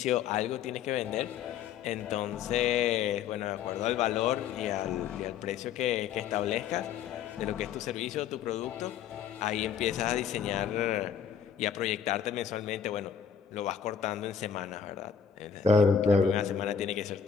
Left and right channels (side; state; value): right; quieter; 7.6 dB